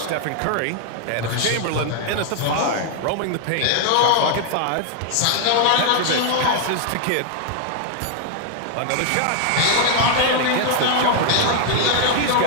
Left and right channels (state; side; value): different; both; correlation 0.00